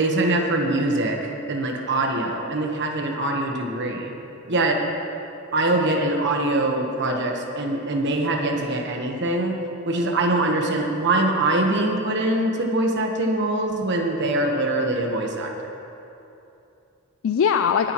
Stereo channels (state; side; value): normal; both; correlation 0.15